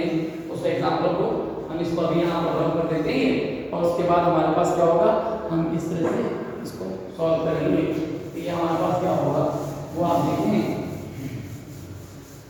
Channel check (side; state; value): both; identical; correlation 1.00